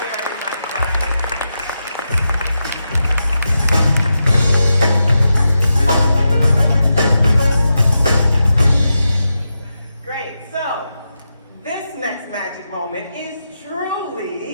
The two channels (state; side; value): inverted; both; correlation -0.88